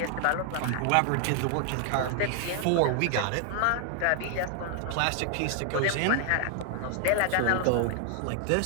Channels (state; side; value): different; both; correlation 0.00